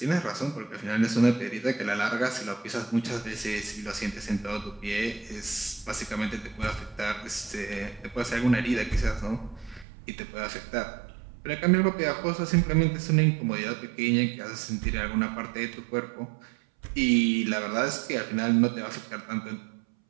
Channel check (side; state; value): left; drops out; at 9.9 s